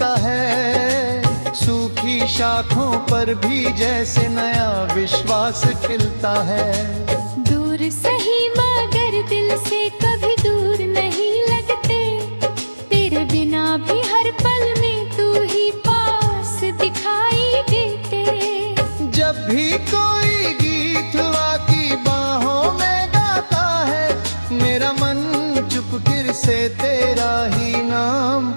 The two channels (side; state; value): both; inverted; correlation -1.00